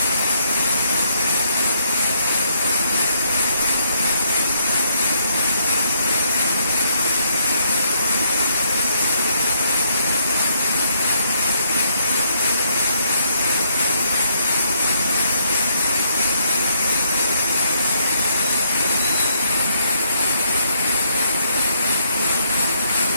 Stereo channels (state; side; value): inverted; both; correlation -0.72